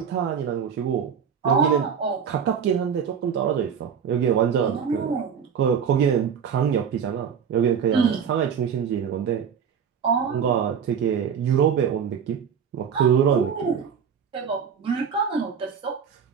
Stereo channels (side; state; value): left; quieter; 7.3 dB